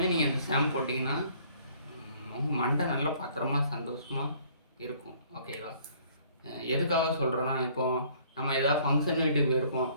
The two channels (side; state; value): both; inverted; correlation -0.58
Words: நீங்கள் அந்த ஷாம்பு போட்டிங்கன்னா மண்டை நல்லா பத்திரமா சந்தோஷமாக இருக்கும், ஓகேவா? எதுக்காக சொல்கிறேன்னா, இப்போது நம்ம ஏதாவது ஃபங்க்ஷன் வீட்டுக்கு போயிருப்போம்,